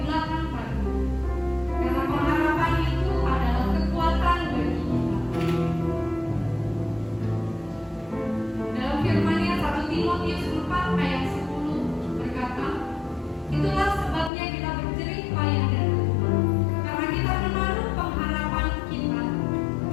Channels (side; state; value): right; drops out; at 14.3 s